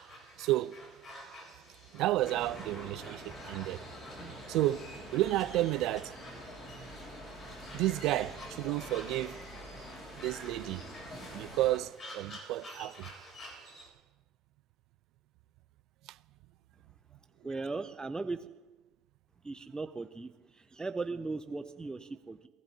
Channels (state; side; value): quieter; left; 10.6 dB